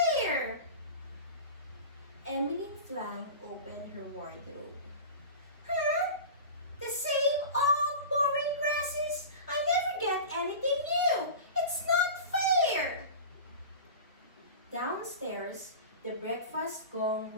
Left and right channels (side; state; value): both; inverted; correlation -0.32